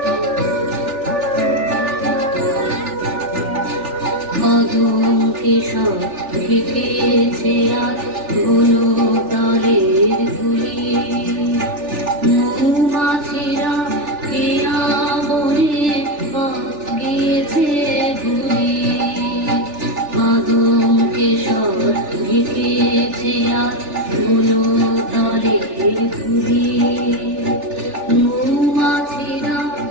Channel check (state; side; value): late; left; 3.4 ms